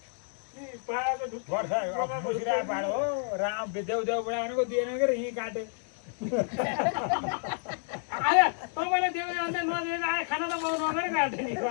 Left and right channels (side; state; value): right; silent; 58 dB below the other